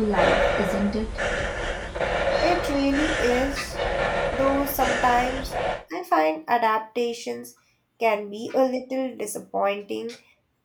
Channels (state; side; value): identical; both; correlation 1.00